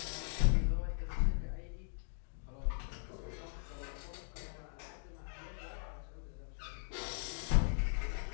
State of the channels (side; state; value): right; silent; 52 dB below the other